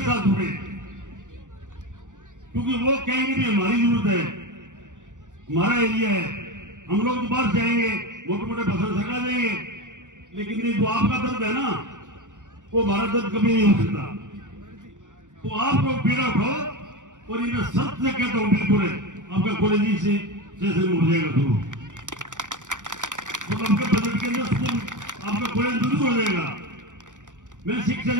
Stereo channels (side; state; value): left; late; 0.86 ms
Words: जुड़े, क्योंकि वो कहेंगे भी हमारी जरूरत है, हमारा एरिया है। हम लोग तो बाहर जाएंगे, मोटे मोटे फसल सरका देंगे, लेकिन नहीं जो आपका दर्द है ना, वो हमारा दर्द कभी नहीं हो सकता। तो आप लोग पीड़ा उठाओ। और इन्हें सत्य से कहता हूं, बिल्कुल है, आपका कॉलेज से हो जाएगा शुरू, तो आपके बजट के अंदर स्कूल, आपका कॉलेज जरूर हो जाएगा। मैं शिक्षा